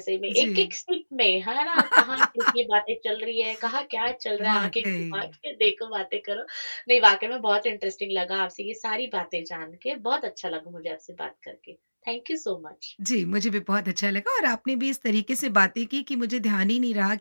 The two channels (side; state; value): both; inverted; correlation -1.00